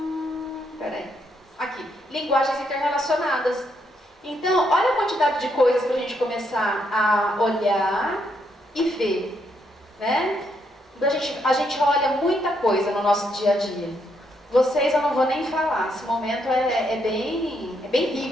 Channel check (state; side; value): normal; both; correlation 0.76